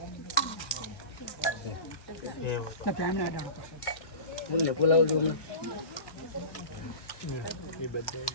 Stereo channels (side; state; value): right; late; 1.2 ms